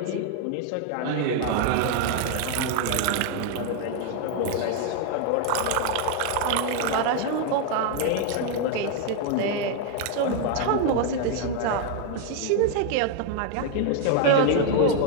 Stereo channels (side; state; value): both; different; correlation 0.01